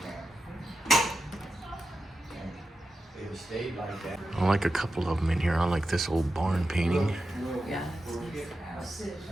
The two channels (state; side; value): normal; both; correlation 0.90